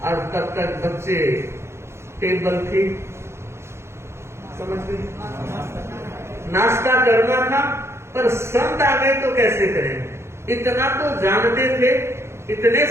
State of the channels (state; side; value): late; left; 0.13 ms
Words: और तब तक बच्चे टेबल थी, समझ गए, नाश्ता करना था। पर संत आ गए तो कैसे करें। इतना तो जानते थे, इतने